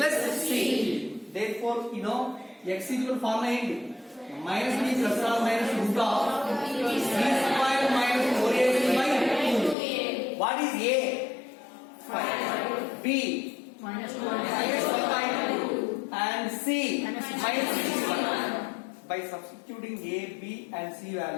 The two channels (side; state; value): right; drops out; at 9.8 s